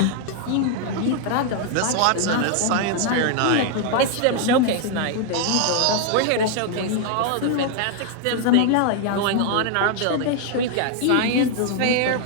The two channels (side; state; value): both; different; correlation 0.00